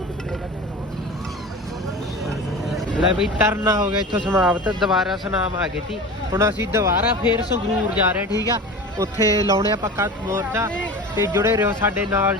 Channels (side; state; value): both; normal; correlation 0.33